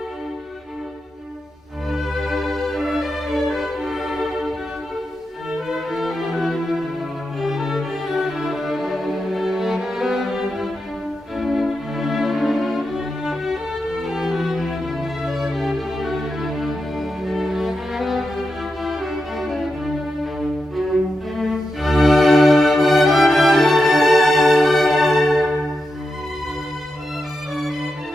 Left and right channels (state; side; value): normal; both; correlation 0.88